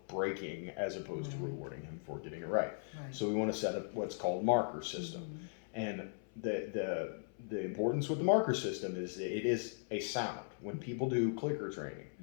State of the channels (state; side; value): silent; right; 52 dB below the other